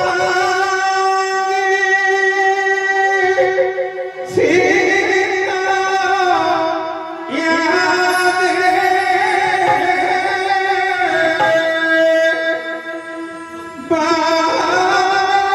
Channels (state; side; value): identical; both; correlation 1.00